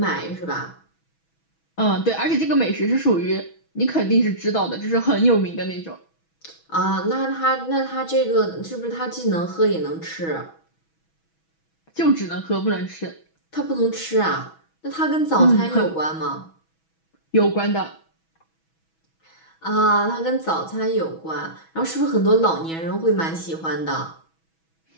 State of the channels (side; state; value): right; late; 6.2 ms